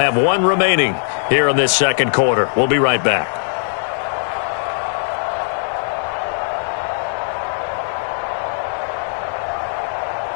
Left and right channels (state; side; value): silent; right; digital silence